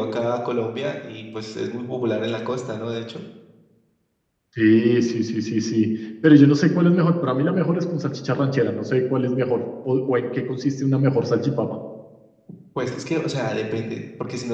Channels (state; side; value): identical; both; correlation 1.00